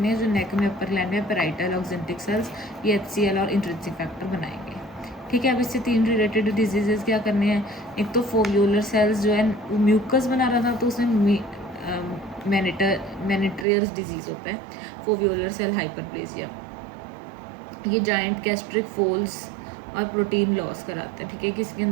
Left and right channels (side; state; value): left; drops out; at 13.7 s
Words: है, जो नेक में अपर ग्लैंड में पेराइटल ऑक्जेंटिक सेल्स ये HCl और इंट्रिंसिक फैक्टर बनाएंगे, ठीक है। अब इससे 3 रिलेटेड डिजीजेज क्या करने हैं। एक तो फोवियोलर सेल्स जो है म्यूकस बना रहा था तो उसमें मेनिट्रियर्स डिजीज़ होता है, फोवियोलर सेल हाइपरप्लेजिया। ये जाइंट गैस्ट्रिक फोल्स और प्रोटीन लॉस कराता है, ठीक है, किसके